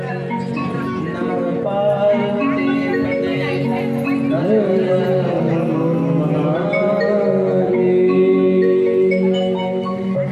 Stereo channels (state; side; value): identical; both; correlation 1.00